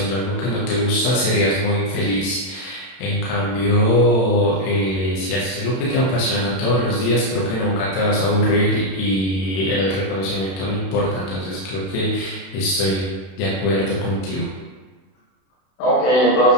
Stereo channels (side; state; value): right; late; 31 ms